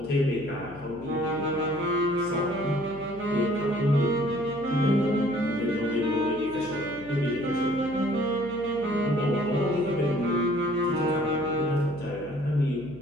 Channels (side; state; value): left; noise; hum, 18 dB below the sound